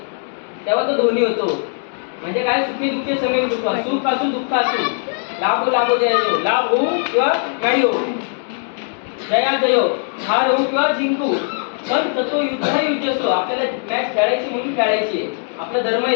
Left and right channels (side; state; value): right; silent; 58 dB below the other